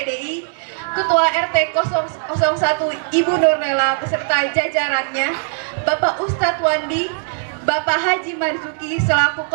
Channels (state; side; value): silent; left; digital silence